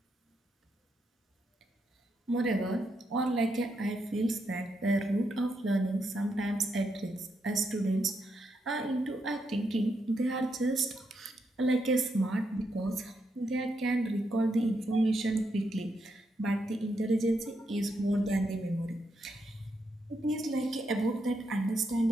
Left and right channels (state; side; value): normal; both; correlation 0.81